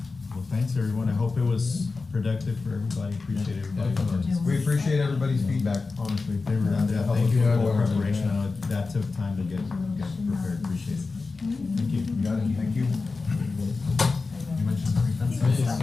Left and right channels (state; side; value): quieter; right; 4.0 dB